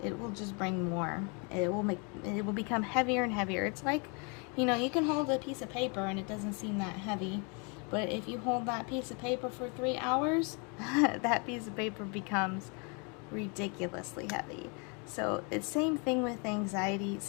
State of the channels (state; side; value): quieter; right; 34.0 dB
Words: it will just bring more. It will become heavier and heavier. It's like, you know, you can hold a piece of paper and it doesn't seem that heavy, but if you hold that piece of paper for 3 hours, that piece of paper becomes ridiculously heavy. So it's same thing with anxiety,